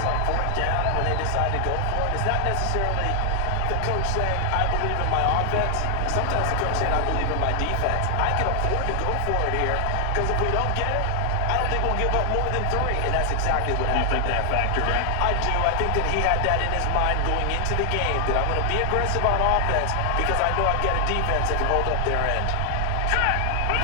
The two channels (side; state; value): both; different; correlation 0.00